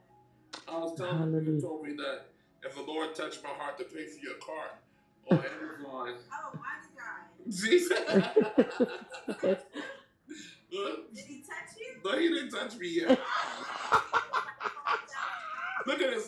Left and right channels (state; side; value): identical; both; correlation 1.00